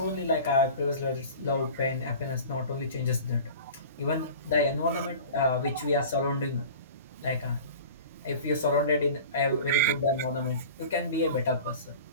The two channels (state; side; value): inverted; both; correlation -0.38